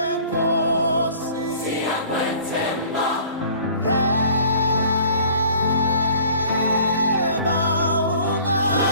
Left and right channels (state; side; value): inverted; both; correlation -0.50